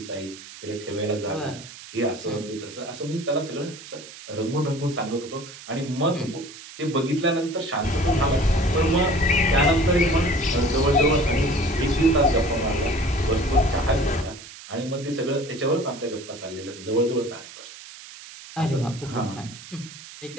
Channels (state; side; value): noise; right; hiss, 16 dB below the sound